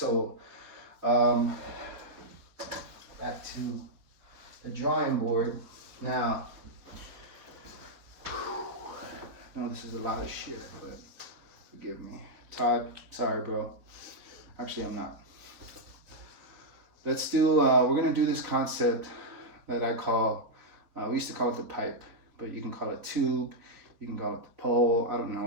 back to the drawing board. Now, I know this is a lot of shit, but forgive me. Todd, sorry, bro. Actually, I'm not. Let's do, we're gonna do this concept that I call, we used to call it the pipe, but you can call it tube, you can call it the pole, I don't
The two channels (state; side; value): late; left; 4.2 ms